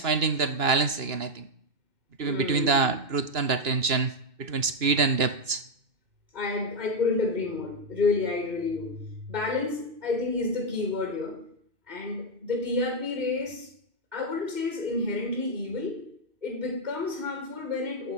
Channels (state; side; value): late; left; 2.9 ms